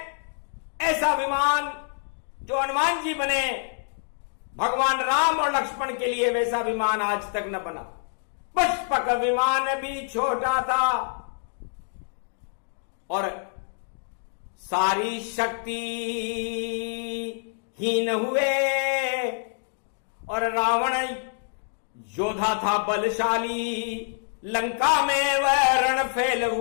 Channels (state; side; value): silent; right; digital silence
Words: ऐसा विमान जो हनुमान जी बने, भगवान राम और लक्ष्मण के लिए वैसा विमान आज तक न बना। पुष्पक विमान भी छोटा था, और सारी शक्ति हीन हुए, और रावण योद्धा था बलशाली, लंका में वह रणफेल